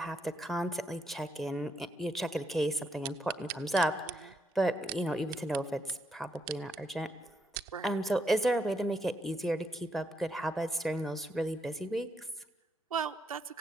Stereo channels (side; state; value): both; normal; correlation 0.78